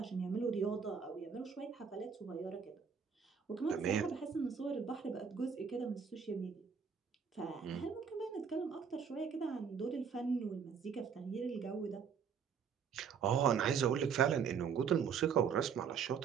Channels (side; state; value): left; quieter; 6.6 dB